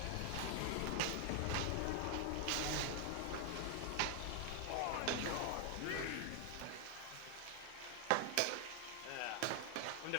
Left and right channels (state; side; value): different; both; correlation 0.00